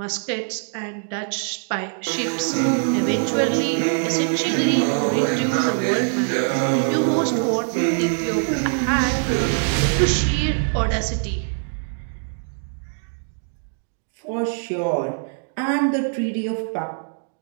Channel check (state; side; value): silent; left; 59 dB below the other